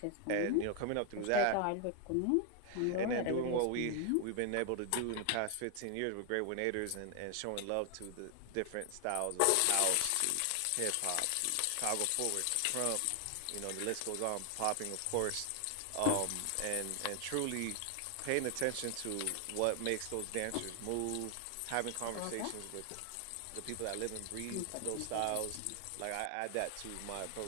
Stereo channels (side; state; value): both; different; correlation 0.00